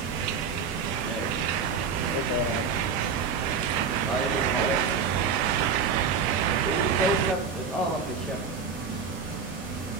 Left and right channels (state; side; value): quieter; left; 5.8 dB